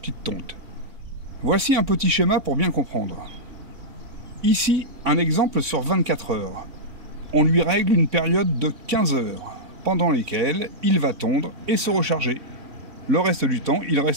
de tonte. Voici un petit schéma pour bien comprendre. Ici, un exemple sur 24 heures. On lui règle une période de 15 heures, pendant lesquelles il va tondre et se recharger. Le reste du temps, il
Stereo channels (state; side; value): late; left; 3.6 ms